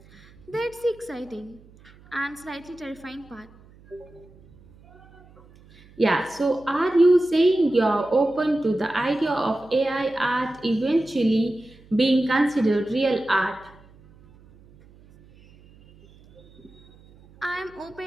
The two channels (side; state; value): right; noise; hum, 26 dB below the sound